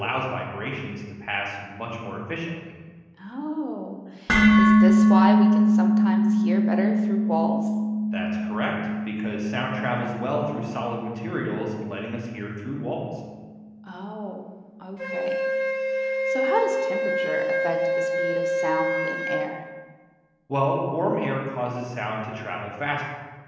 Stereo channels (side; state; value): both; identical; correlation 1.00